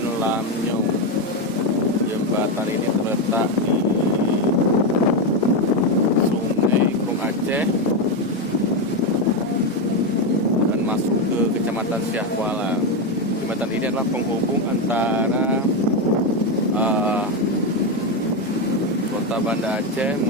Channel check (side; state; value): both; normal; correlation 0.09